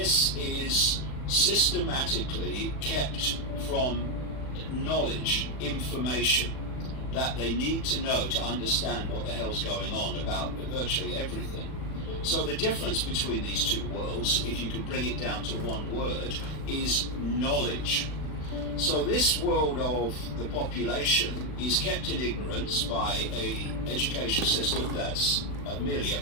is systematically kept from knowledge, information that they need to know to understand what the hell's going on about virtually everything. So the difference between these two worlds, if you can bring it down to one word, is knowledge. So this world of the population is kept in ignorance by a education system that's merely a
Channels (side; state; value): right; late; 39 ms